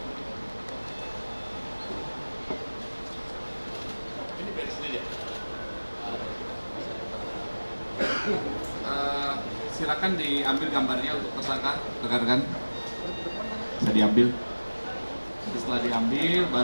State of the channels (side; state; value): both; inverted; correlation -1.00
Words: Ini beres sendiri ya? Silakan diambil gambarnya untuk tersangka, rekan-rekan. Bisa diambil. Setelah diambil,